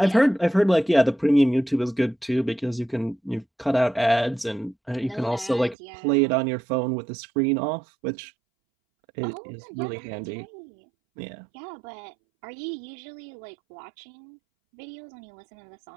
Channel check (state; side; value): drops out; left; at 5.8 s